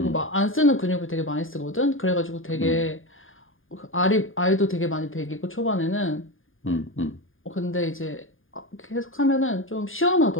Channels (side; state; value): right; late; 0.59 ms